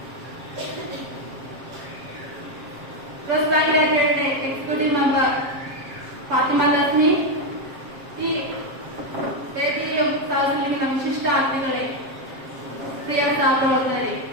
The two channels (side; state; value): left; late; 7.5 ms